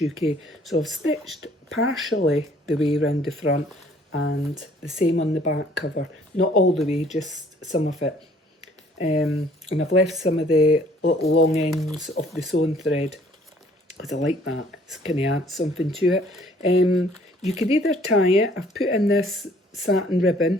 So I've stitched partially the way around the front and the same on the back cover. Not all the way, just some of it. And I've left some of the little long ends of the sewn thread because I like that. It's kind of adds something to it. You could either tie it. I've put in this satin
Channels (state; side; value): normal; both; correlation 0.59